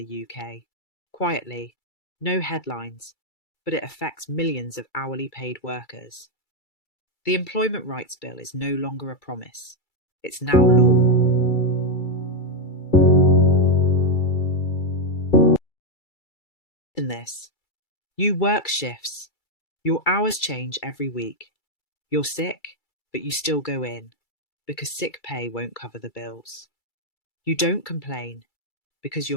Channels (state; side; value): late; right; 2.3 ms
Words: UK. Quietly, no headlines, but it affects millions of hourly paid workers. The Employment Rights Bill is no longer a promise. It's now law. In this, you work shifts. Your hours change every week. You're sick, but you still go in because sick pay won't cover the bills. You don't complain because